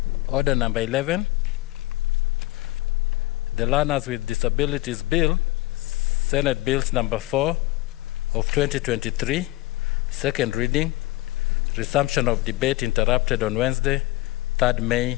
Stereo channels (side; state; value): right; quieter; 18.9 dB